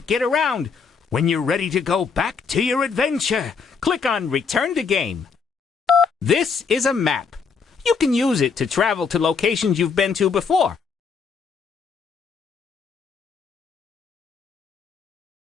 get around. When you're ready to go back to your adventure, click on Return to Game. This is a map. You can use it to travel to locations you've been to before.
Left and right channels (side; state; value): right; quieter; 5.6 dB